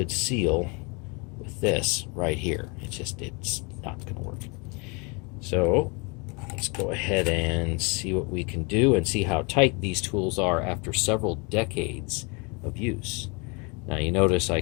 seal with this right here. It's not going to work. So let's go ahead and see what we can do and see how tight these tools are after several decades of use. Now you notice I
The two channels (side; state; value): right; quieter; 30.8 dB